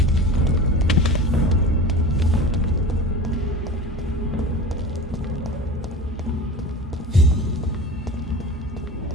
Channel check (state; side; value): normal; both; correlation 0.34